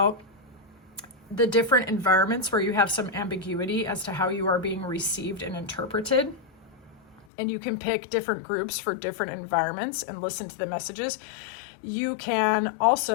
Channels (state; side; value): drops out; right; at 7.2 s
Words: the different environments where you have some ambiguity as to how you are being received and interpreted. And you can pick different groups for different environments and listen to the messages. You can